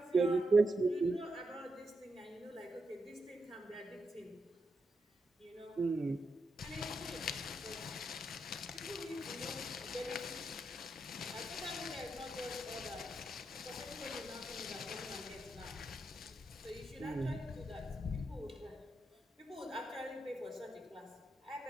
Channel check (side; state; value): both; normal; correlation 0.84